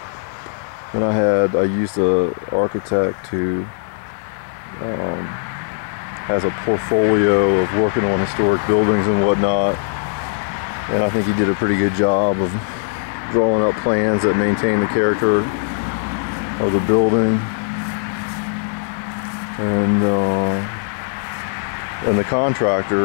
And I used an architect who has a portfolio of working on historic buildings and whatnot, and I think he did a pretty good job of drawing up plans that maintain the character of the building. And the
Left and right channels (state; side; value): silent; right; digital silence